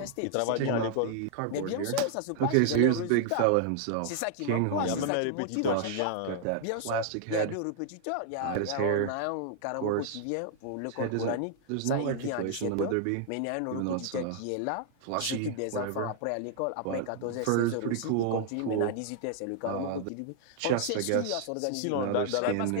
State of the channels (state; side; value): different; both; correlation -0.01